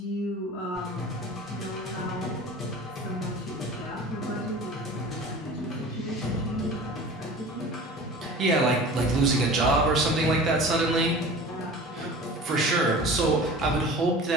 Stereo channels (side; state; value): both; normal; correlation 0.39